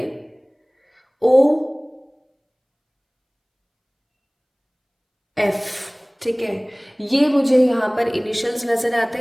OF। ठीक है, ये मुझे यहाँ पर इनिशियल्स नजर आते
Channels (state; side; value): identical; both; correlation 1.00